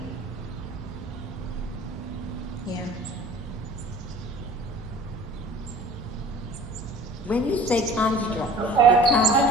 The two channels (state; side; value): normal; both; correlation 0.46